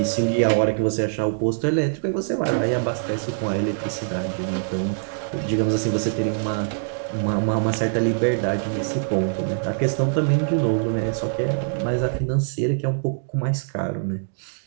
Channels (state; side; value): silent; left; digital silence